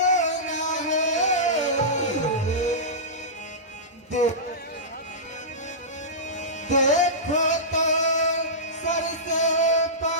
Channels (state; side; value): normal; both; correlation -0.18